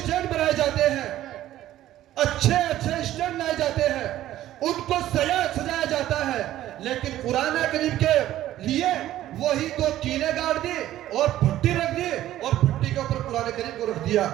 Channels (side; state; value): left; quieter; 13.6 dB